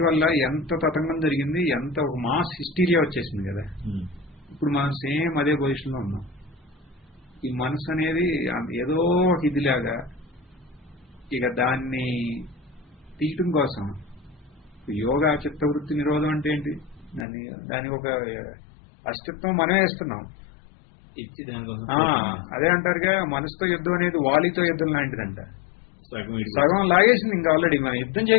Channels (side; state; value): right; drops out; at 17.2 s